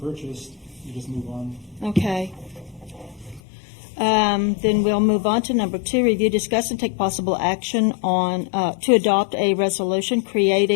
purchased, you just move on. Okay. Then we'll move on to number 2, review, discuss, and take possible action on, to adopt a resolution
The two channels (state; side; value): drops out; right; at 3.4 s